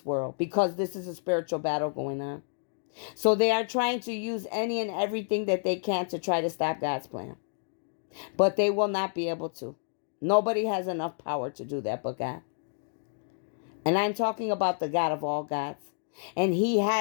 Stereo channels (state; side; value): silent; right; digital silence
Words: world, because this is a spiritual battle going on. So they are trying to use any and everything that they can to try to stop God's plan. But they will not be able to. Nobody has enough power to do that but God. And I'm talking about the God of all gods. And he